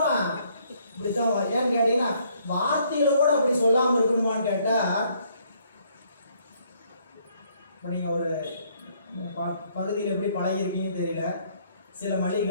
இப்படித்தான். ஏன்னு கேட்டீங்கன்னா வார்த்தையில கூட அப்படி சொல்லாமல் இருக்கணுமான்னு கேட்டால், இப்போ நீங்கள் ஒரு பகுதியில் எப்படி பழகிருக்கீங்கன்னு தெரியல. சில மளிகை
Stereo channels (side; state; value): both; inverted; correlation -0.67